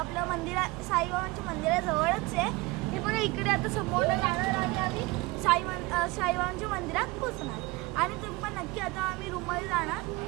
साईबाबांच्या मंदिराजवळच आहे. हे पण इकडे आता समोर जाणार आणि आम्ही साईबाबांच्या मंदिरात पोचणार. आणि तुम्ही पण नक्की आता आम्ही रूममध्ये जाणार.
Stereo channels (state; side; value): quieter; left; 22.9 dB